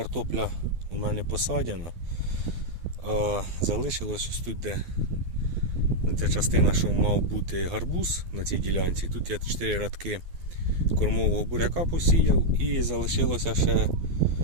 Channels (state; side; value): late; left; 12 ms